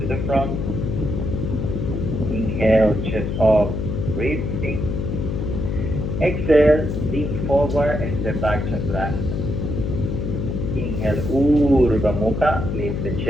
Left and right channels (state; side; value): noise; left; hum, 2 dB below the sound